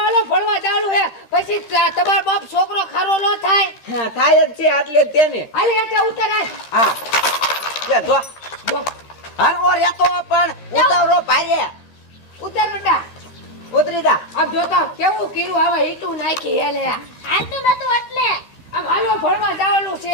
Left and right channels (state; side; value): late; right; 15 ms